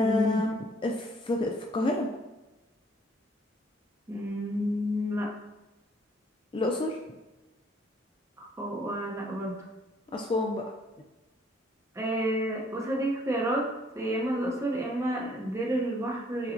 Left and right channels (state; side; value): normal; both; correlation 0.63